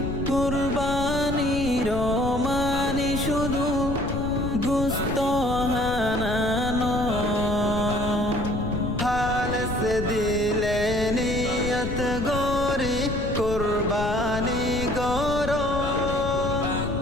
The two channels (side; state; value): left; noise; rumble, 6 dB below the sound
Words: কুরবানির মানে শুধু গোশত হানানো হালস দিলে নিয়ত গরি কুরবানি গর